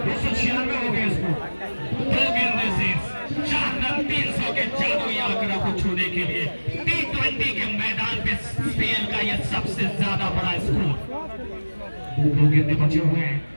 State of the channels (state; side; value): inverted; both; correlation -1.00